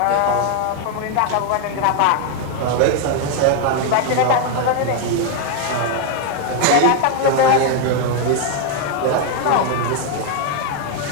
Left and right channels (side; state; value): both; different; correlation 0.00